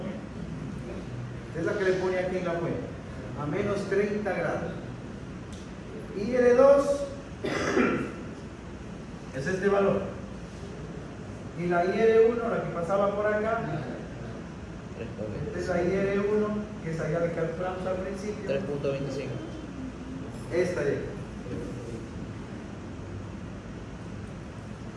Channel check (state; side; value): identical; both; correlation 1.00